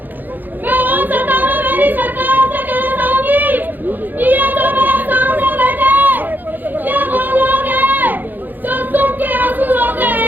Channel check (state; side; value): late; left; 0.087 ms